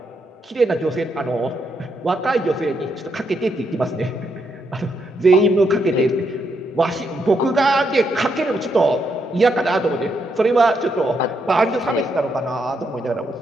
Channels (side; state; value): both; normal; correlation 0.78